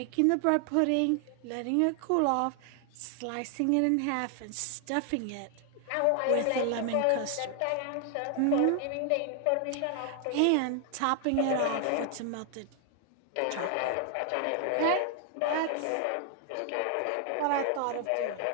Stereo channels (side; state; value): both; different; correlation 0.00